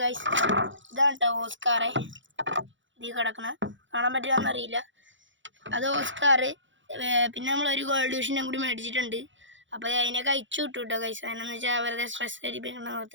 ഗൈസ്, ഇതാണ് കേട്ടോ ഓസ്കാറെ, ഇത് കിടക്കണ കാണാൻ പറ്റുമെന്നറിയില്ല. അത് ഓസ്കാർ. പിന്നെ നമ്മൾ ഒരു ഗോൾഡ് ഫിഷിനെ കൂടി മേടിച്ചിട്ടുണ്ട്. അപ്പോൾ അതിനൊക്കെ അയച്ചു വിട്ടു കേട്ടോ ഗൈസ്. അതിനെന്ന് വെച്ചാൽ വെറുതെ സ്ട്രെസ് അടിപ്പിക്കണ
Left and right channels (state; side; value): late; left; 0.55 ms